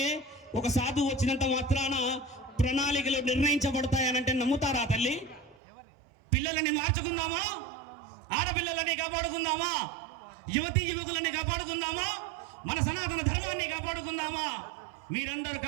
ఒక సాధువు వచ్చినంత మాత్రాన ప్రణాళికలు నిర్ణయించబడతాయనంటే నమ్ముతారా తల్లి? పిల్లలని మార్చుకుందామా? ఆడపిల్లలని కాపాడుకుందామా? యువతీ యువకులని కాపాడుకుందామా? మన సనాతన ధర్మాన్ని కాపాడుకుందామా? మీరందరూ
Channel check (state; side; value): drops out; left; at 5.6 s